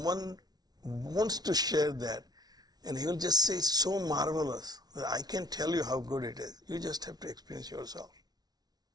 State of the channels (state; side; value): late; left; 0.19 ms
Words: wants to share that. And he will just say, it's so marvelous that I can't tell you how good it is. You just have to experience yourself.